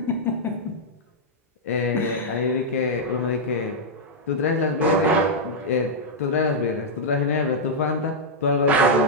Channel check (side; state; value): both; normal; correlation -0.06